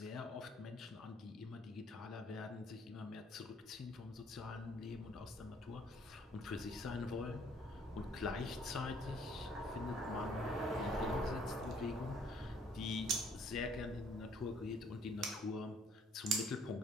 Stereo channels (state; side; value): normal; both; correlation 0.61